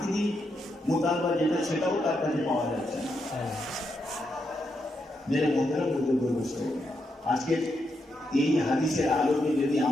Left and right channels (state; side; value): normal; both; correlation 0.82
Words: মোতালবা যেটা সেটাও তার কাছে পাওয়া যাচ্ছে না। মেরে মধ্যে বুঝতে বলছে আজকে এই হাদিসের আলোকে যদি